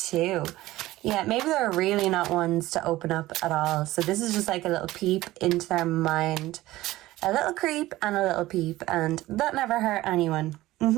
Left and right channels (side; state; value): left; quieter; 17.0 dB